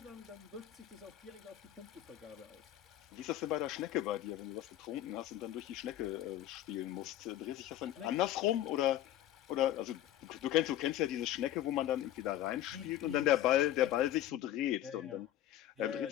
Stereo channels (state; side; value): quieter; right; 12.7 dB